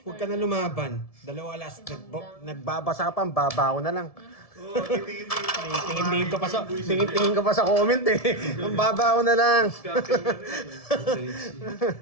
huwag ka na lumaban. Dalawa last. Nagbabasa ka pa, ang baba ko na lang. Oh, Tingin ko pa sa comment eh. Ang baba ko na lang.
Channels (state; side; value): late; right; 1.7 ms